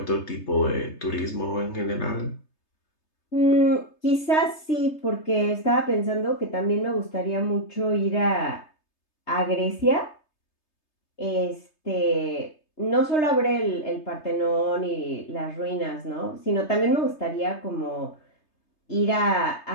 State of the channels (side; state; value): right; late; 3.3 ms